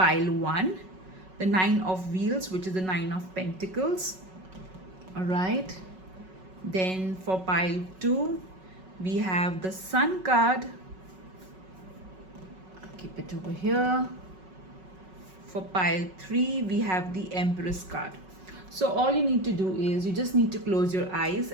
1 the 9 of wheels, which is the 9 of pentacles. All right, then for pile 2 we have the sun card. I'll keep it over here. For pile 3 we have the empress card. So all you need to do is you just need to close your eyes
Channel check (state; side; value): late; left; 5.4 ms